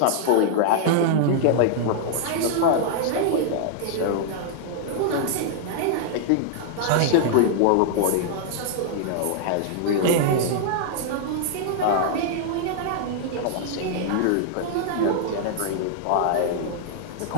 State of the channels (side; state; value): both; different; correlation -0.01